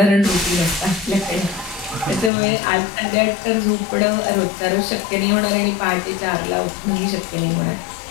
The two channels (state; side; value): drops out; right; at 2.3 s